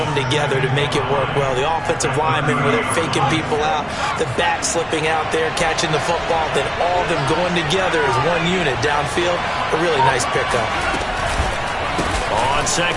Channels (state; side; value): identical; both; correlation 1.00